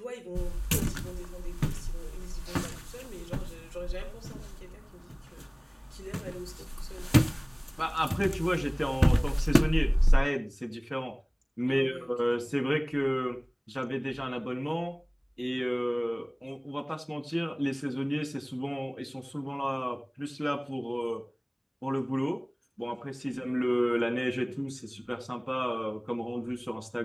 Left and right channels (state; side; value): identical; both; correlation 1.00